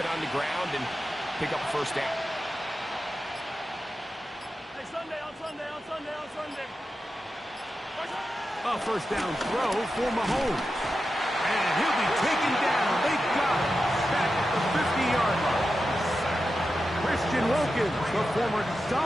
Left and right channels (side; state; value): both; normal; correlation 0.90